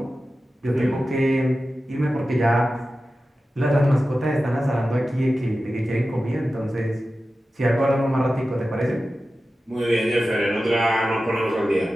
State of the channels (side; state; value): both; normal; correlation 0.94